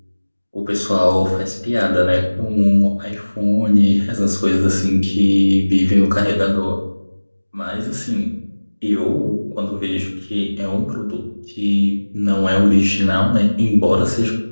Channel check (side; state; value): both; inverted; correlation -1.00